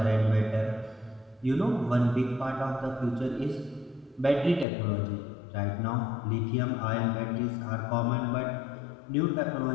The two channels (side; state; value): right; drops out; at 4.7 s